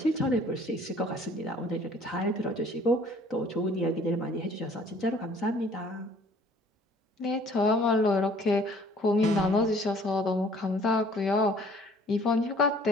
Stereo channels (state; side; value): normal; both; correlation 0.55